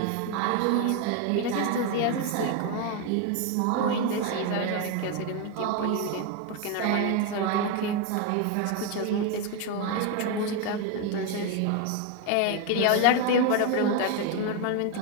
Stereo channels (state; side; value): different; both; correlation 0.01